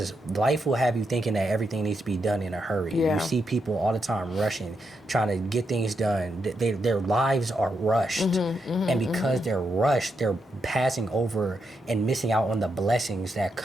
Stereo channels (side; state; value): both; normal; correlation 0.82